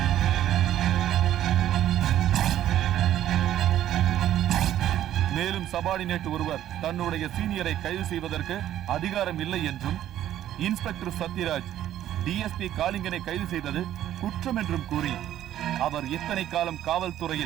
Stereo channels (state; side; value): quieter; left; 12.0 dB